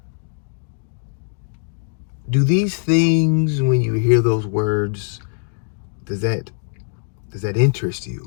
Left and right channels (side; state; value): right; silent; digital silence